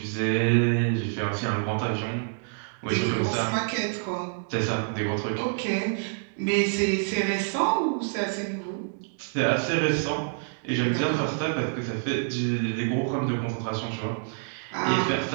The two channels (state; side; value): silent; left; digital silence